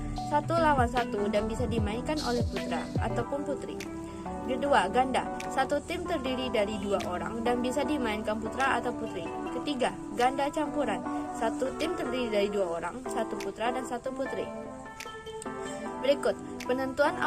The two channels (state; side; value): identical; both; correlation 1.00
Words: 1 lawan 1 dan bisa dimainkan oleh putra ataupun putri. Kedua, ganda, 1 tim terdiri dari 2 orang dan bisa dimainkan putra atau putri. Ketiga, ganda campuran, 1 tim terdiri dari 2 orang, 1 putra dan 1 putri. Berikut, penentuan